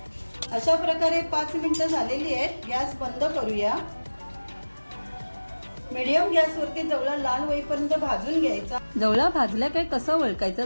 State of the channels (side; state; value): both; inverted; correlation -1.00